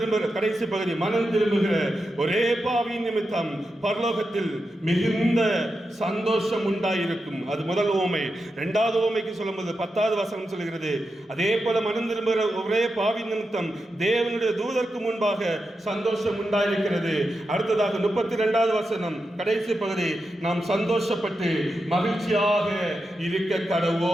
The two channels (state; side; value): normal; both; correlation 0.88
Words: கடைசி பகுதி, மனம் திரும்புகிற ஒரே பாவியின் நிமித்தம் பரலோகத்தில் மிகுந்த சந்தோஷம் உண்டாயிருக்கும். அது முதல் ஓமை. 2வது ஓமைக்கு சொல்லும்போது 10வது வசனம் சொல்லுகிறது, அதே போல மனம் திரும்புகிற ஒரே பாவியின் நிமித்தம் தேவனுடைய தூதருக்கு முன்பாக சந்தோஷம் உண்டாயிருக்கிறது. அடுத்ததாக 32வது வசனம், கடைசி பகுதி, நாம் சந்தோஷப்பட்டு மகிழ்ச்சியாக இருக்க